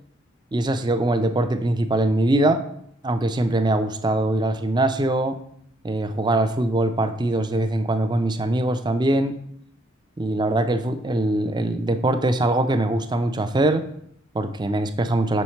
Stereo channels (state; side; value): normal; both; correlation 0.70